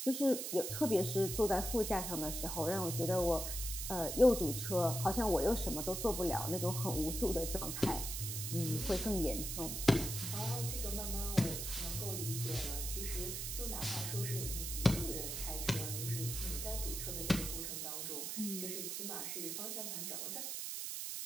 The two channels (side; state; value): right; noise; hiss, 4 dB below the sound